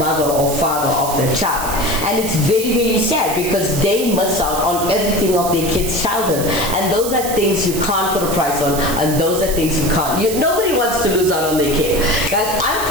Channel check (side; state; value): right; noise; hiss, 7 dB below the sound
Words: or father of their child. And it's very, very sad because they miss out on everything of their kid's childhood. And those are things you can't put a price on, and those are things you can't. Nobody wants to lose out on their kid. Guys, I'm